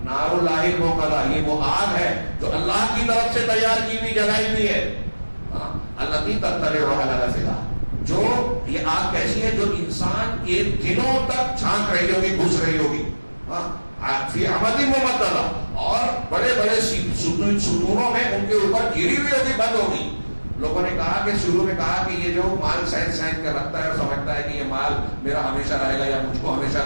نار اللہ الموقدہ، یہ وہ آگ ہے جو اللہ کی طرف سے تیار کی ہوئی جلائی ہوئی ہے. التی تطلع علی الافئدہ، جو یہ آگ کیسی ہے جو انسان کے دلوں تک جھانک رہی ہوگی، گھس رہی ہوگی. فی عمد ممددہ، اور بڑے بڑے ستونوں میں ان کے اوپر گھری ہوئی ہوگی، بند ہوگی. لوگوں نے کہا کہ شروع میں کہا کہ یہ جو مال سینت کر رکھتا ہے اور سمجھتا ہے کہ یہ مال میرا ہمیشہ رہے گا یا مجھ کو ہمیشہ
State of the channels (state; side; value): inverted; both; correlation -1.00